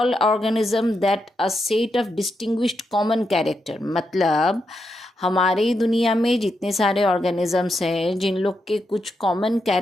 organism that a set of distinguished common character. मतलब हमारी दुनिया में जितने सारे ऑर्गेनिजम्स हैं जिन लोग के कुछ कॉमन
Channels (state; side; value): normal; both; correlation 0.84